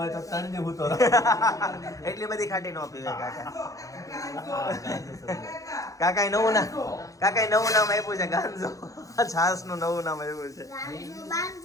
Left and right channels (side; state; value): right; late; 0.16 ms